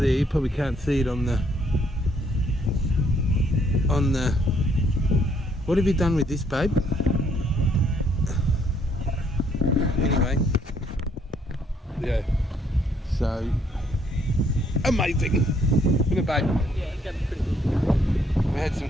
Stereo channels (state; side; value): normal; both; correlation 0.68